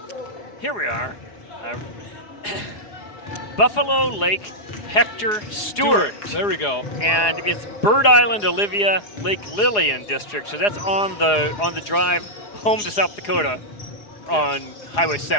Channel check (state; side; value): late; right; 4.8 ms